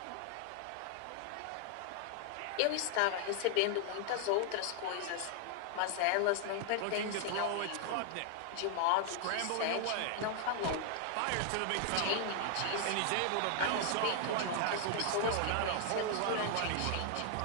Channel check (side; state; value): both; different; correlation 0.00